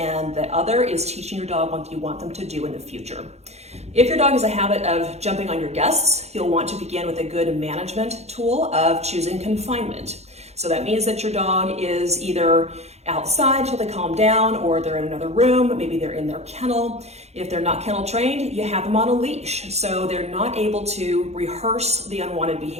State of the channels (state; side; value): late; left; 0.31 ms